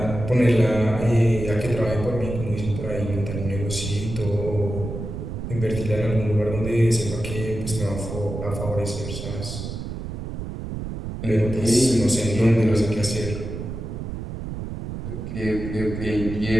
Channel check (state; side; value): noise; right; rumble, 7 dB below the sound